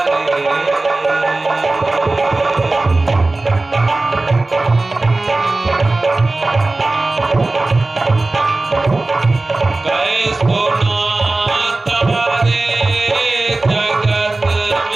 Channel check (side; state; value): left; quieter; 3.1 dB